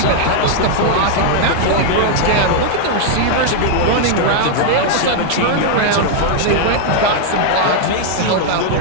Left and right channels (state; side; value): different; both; correlation 0.00